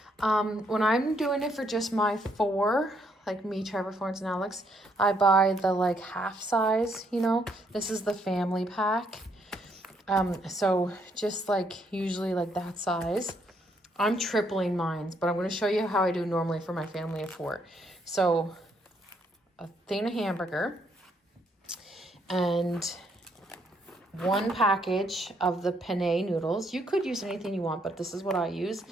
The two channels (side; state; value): both; normal; correlation 0.72